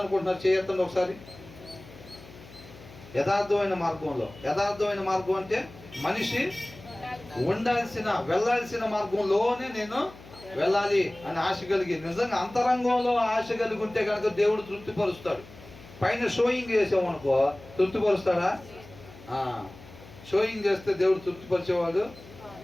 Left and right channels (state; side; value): noise; left; hum, 20 dB below the sound